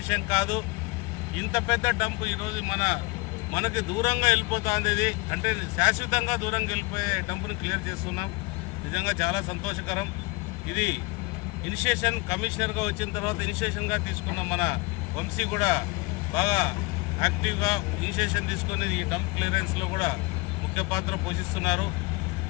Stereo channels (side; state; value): right; quieter; 25.7 dB